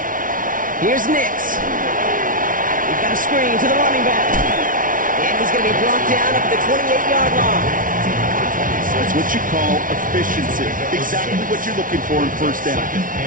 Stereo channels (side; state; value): left; late; 0.39 ms